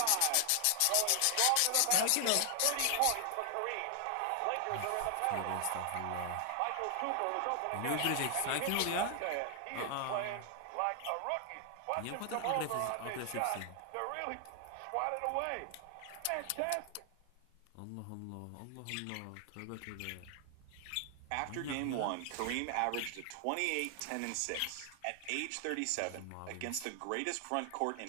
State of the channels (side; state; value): both; different; correlation 0.00